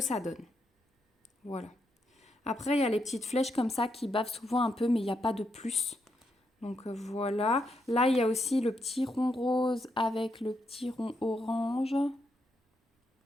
donne. Voilà. Après, il y a les petites flèches comme ça qui bavent souvent un peu, mais il n'y a pas de plus. Donc voilà. Là, il y a aussi le petit rond rose avec le petit rond orange.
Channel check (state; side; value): normal; both; correlation 0.81